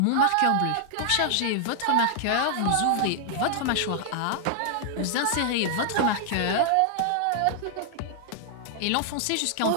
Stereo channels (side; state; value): both; different; correlation 0.00